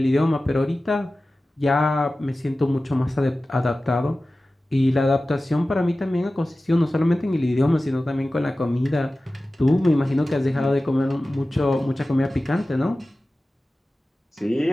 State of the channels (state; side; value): normal; both; correlation 0.96